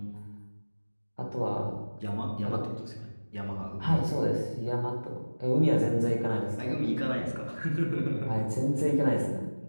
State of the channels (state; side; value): inverted; both; correlation -1.00